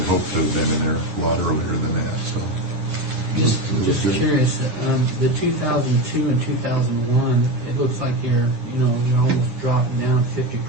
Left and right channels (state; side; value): late; left; 9.9 ms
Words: hoped to have been in there a lot earlier than that, so. Just It was good. curious, the 2002 and 2001, it looks like you're almost dropping down